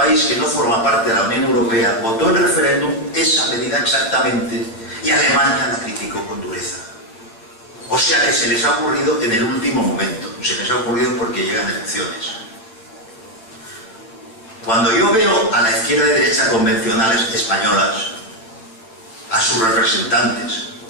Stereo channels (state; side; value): late; right; 9.0 ms